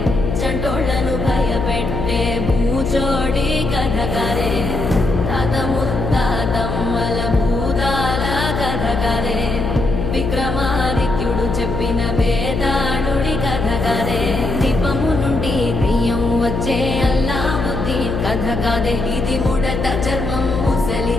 చంటోళ్లను భయపెట్టే భూచోడి కథ కదే, తాత ముత్తాతమ్మల భూతాల కథ కదే, విక్రమాదిత్యుడు చెప్పిన వేదాళుడి కథ కదే, దీపము నుండి బియ్యం వచ్చే అల్లావుద్దీన్ కథ కదే, ఇది ముడత చర్మం ముసలి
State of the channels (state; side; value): noise; left; hum, 2 dB below the sound